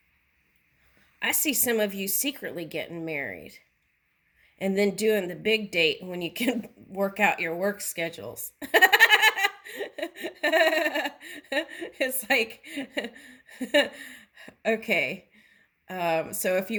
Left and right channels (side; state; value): both; identical; correlation 1.00